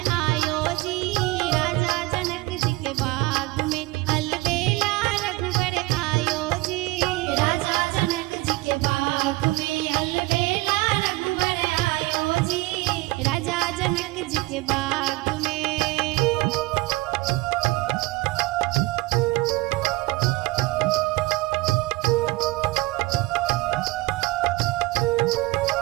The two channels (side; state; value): left; quieter; 21.1 dB